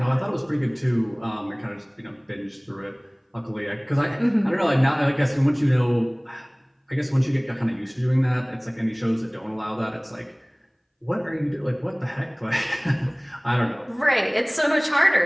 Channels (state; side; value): identical; both; correlation 1.00